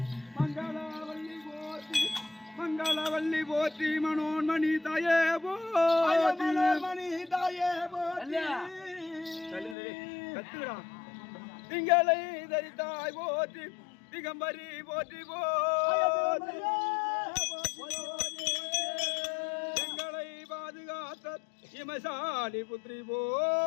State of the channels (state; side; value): drops out; right; at 9.8 s